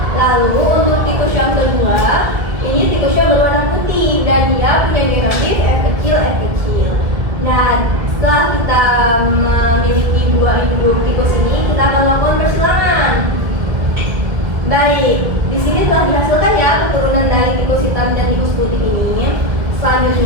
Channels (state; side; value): late; left; 1.9 ms